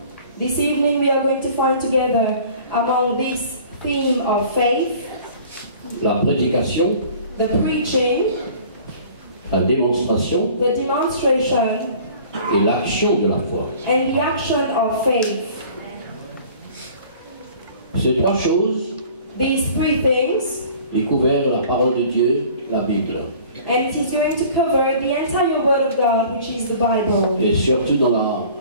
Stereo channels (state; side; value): inverted; both; correlation -0.48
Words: This evening we are going to find together among this theme of faith, La prédication, the preaching, la démonstration the demonstration, et l'action de la foi. and the action of faith. Ces trois choses These three things, découvrent la parole de Dieu, la Bible. and it is going to cover the entire Word of God, which is the Bible. Et surtout